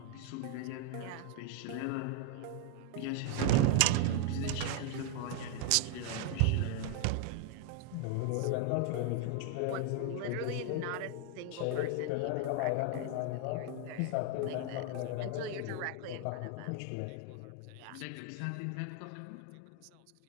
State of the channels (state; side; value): different; both; correlation 0.00